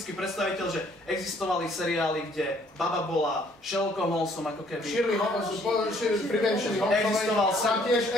predstaviteľ, že existovali seriály, kde baba bola Sherlockom Holmesom, ako keby. Shirley Holmesovej, Existoval tam tiež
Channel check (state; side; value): normal; both; correlation 0.63